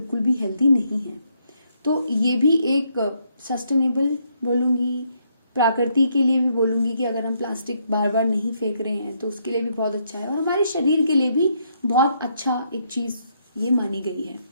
भी हेल्दी नहीं है। तो ये भी एक सस्टेनेबल बोलूँगी, प्रकृति के लिए भी बोलूँगी कि अगर हम प्लास्टिक बार बार नहीं फेंक रहे हैं तो उसके लिए भी बहुत अच्छा है और हमारे शरीर के लिए भी बहुत अच्छा एक चीज़ ये मानी गई है।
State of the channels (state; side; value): inverted; both; correlation -0.74